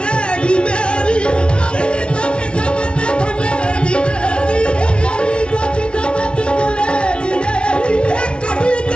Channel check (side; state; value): right; late; 0.058 ms